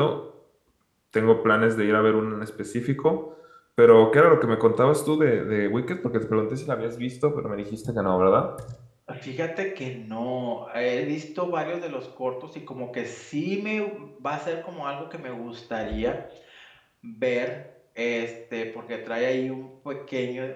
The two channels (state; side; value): identical; both; correlation 1.00